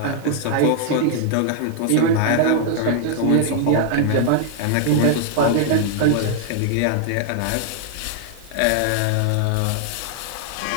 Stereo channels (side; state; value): both; different; correlation 0.00